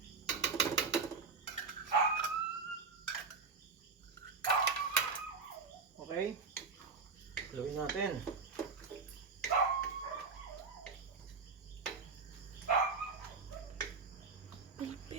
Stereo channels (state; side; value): quieter; left; 4.8 dB